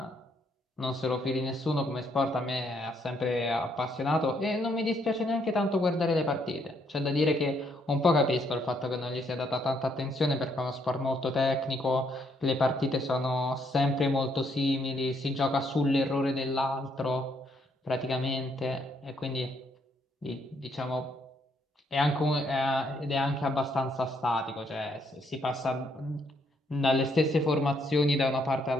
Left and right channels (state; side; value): normal; both; correlation 0.72